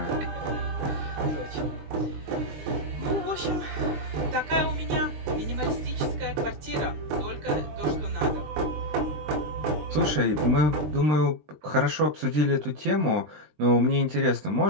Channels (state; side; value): late; left; 20 ms